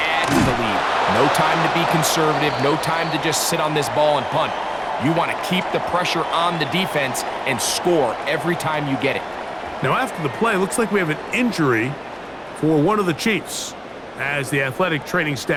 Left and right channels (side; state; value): both; identical; correlation 1.00